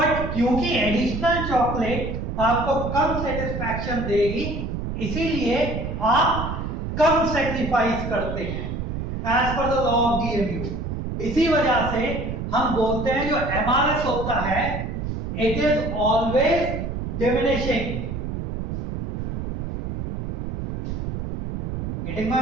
क्योंकि एडिशनल चॉकलेट आपको कम सेटिस्फैक्शन देगी इसीलिए आप कम सेक्रीफाइस करते हैं as per the law of DMU. इसी वजह से हम बोलते हैं जो एमआरएस होता है it is always diminishing. Getting my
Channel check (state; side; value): noise; right; rumble, 4 dB below the sound